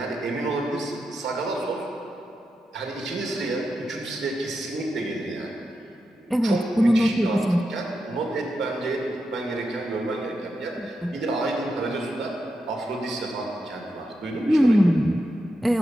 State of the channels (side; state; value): both; normal; correlation 0.87